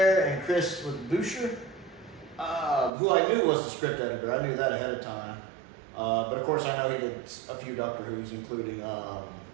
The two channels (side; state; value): left; drops out; at 2.9 s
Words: and Chris Boucher, who I knew was the script editor. I knew that ahead of time. But of course I know he did a few Doctor Who's, including